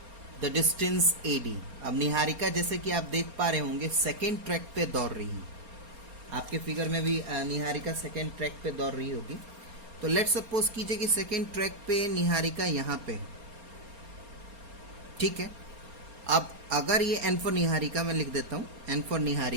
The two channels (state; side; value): late; left; 4.3 ms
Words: the distance AD. अब निहारिका जैसे कि आप देख पा रहे होंगे सेकेंड ट्रैक पे दौड़ रही है, आपके फिगर में भी निहारिका सेकेंड ट्रैक पे दौड़ रही होगी। तो लेट्स सपोज कीजिए कि सेकेंड ट्रैक पे निहारिका यहाँ पे, ठीक है। अब अगर ये एन फॉर निहारिका मैं लिख देता हूँ, एन फॉर